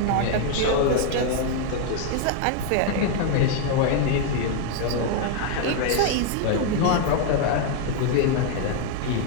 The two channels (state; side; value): different; both; correlation 0.00